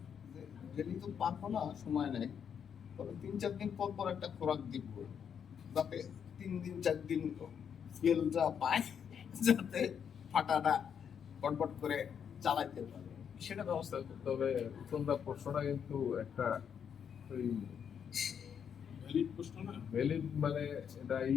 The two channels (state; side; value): quieter; right; 7.7 dB